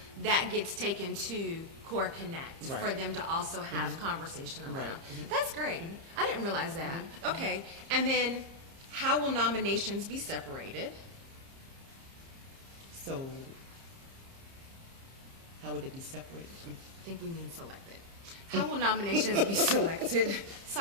that gets taken to COR Connect for them to also have conversation around. That's great. I didn't realize that. Okay. And then how will nominations be separated? So how would it be separated? I think we mean selected. How will nominations be selected?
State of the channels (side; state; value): left; late; 30 ms